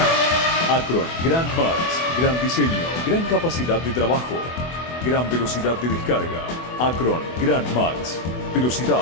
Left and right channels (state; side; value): late; right; 24 ms